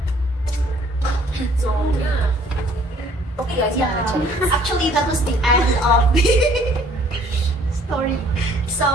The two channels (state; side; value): normal; both; correlation 0.59